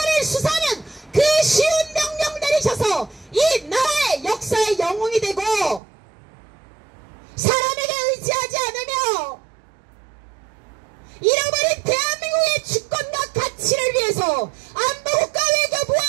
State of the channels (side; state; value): left; drops out; at 5.8 s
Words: 수사하는 그 쉬운 명령 내리셔서 이 나라의 역사의 영웅이 되고 사람에게 의지하지 않으며 잃어버린 대한민국의 주권과 가치를 위해서 안보국가 외교부와